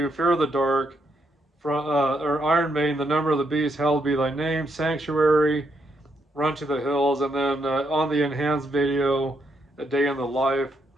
Fear of the Dark, or Iron Maiden, The Number of the Beast, Hallowed Be Thy Name, Sanctuary, Run to the Hills, and then on the enhanced video, A Day in the Life.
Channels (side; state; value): both; normal; correlation 0.78